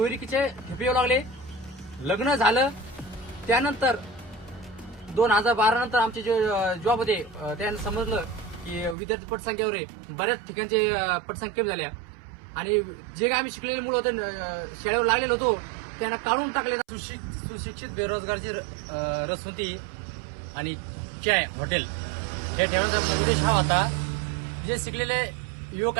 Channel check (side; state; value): left; drops out; at 9.0 s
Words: ठेपे येऊ लागले. लग्न झालं. त्यानंतर 2012 नंतर आमचे जे जॉब होते त्यांना समजलं की विद्यार्थी पटसंख्येवर आहे, बऱ्याच ठिकाणचे पटसंख्या कमी झाल्या आणि जे काय आम्ही शिकलेले मुलं होते, शाळेवर लागलेलो होतो, त्यांना काढून टाकले. सुशिक्षित बेरोजगारची रसवंती आणि चाय हॉटेल हे ठेवण्याचा उद्देश हा होता. जे शिकलेले युवक